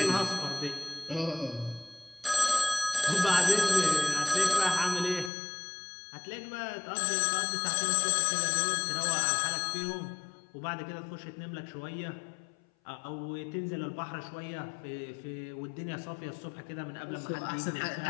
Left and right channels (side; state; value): right; drops out; at 5.3 s